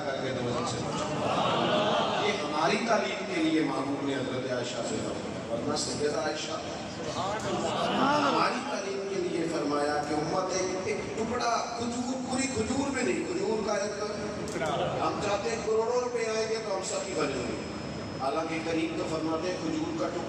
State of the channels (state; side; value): identical; both; correlation 1.00